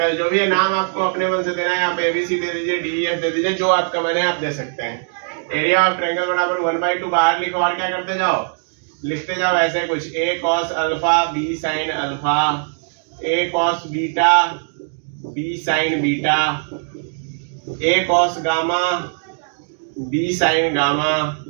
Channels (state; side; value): silent; left; digital silence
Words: जो भी है नाम आपको अपने मन से देना है, आप एबीसी दे दीजिए, डीईएफ दे दीजिए, जो आपका मन है आप दे सकते हैं। एरिया ऑफ ट्रायंगल बराबर 1/2 बाहर लिखो और क्या करते जाओ, लिखते जाओ ऐसे कुछ, a cos alpha b sin alpha, a cos beta b sin beta, a cos gamma b sin gamma,